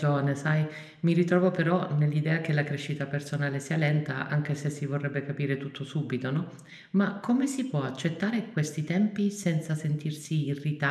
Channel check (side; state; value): both; identical; correlation 1.00